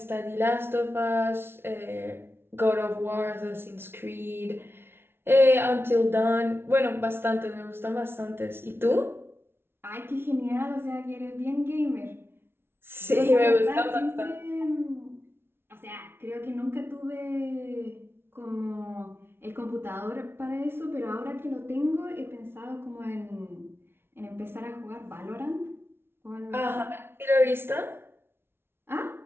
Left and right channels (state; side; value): late; left; 0.11 ms